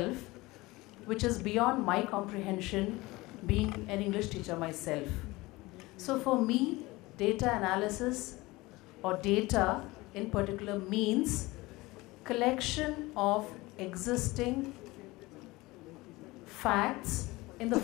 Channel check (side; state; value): right; quieter; 21.1 dB